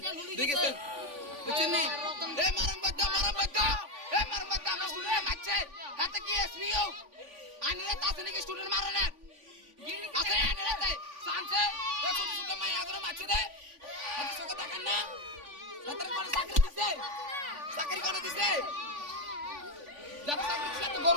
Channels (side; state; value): left; late; 3.5 ms